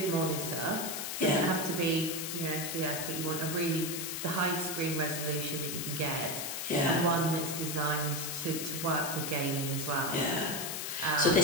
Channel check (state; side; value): noise; left; hiss, 3 dB below the sound